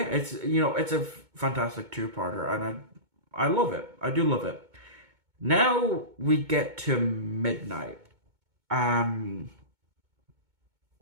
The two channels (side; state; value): left; late; 2.2 ms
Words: it's a fantastic two-parter, and I love it. I do love it. Now we get to Midnight. Um,